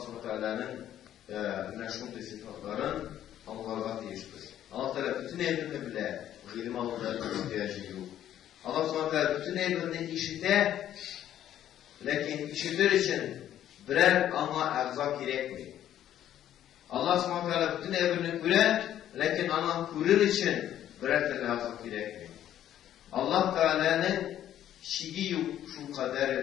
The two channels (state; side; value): quieter; right; 11.4 dB